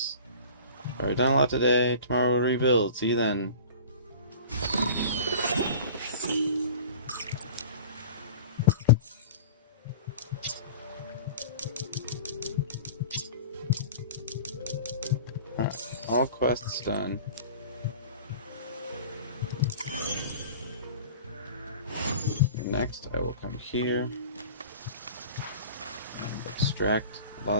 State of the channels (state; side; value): inverted; both; correlation -0.40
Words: Alright, done a lot today. Tomorrow we'll rebuild. See you then. Alright, all quests done. Next, I will come here and extract